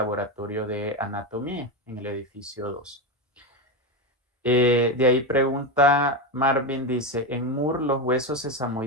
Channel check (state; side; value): normal; both; correlation 0.13